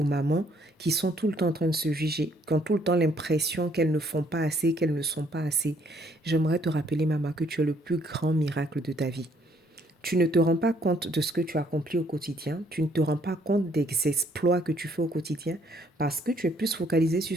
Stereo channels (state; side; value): normal; both; correlation 0.66